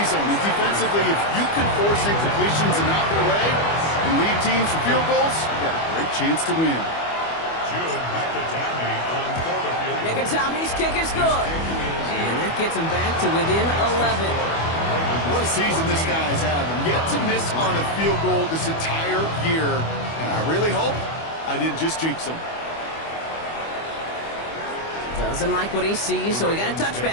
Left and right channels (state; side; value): late; right; 25 ms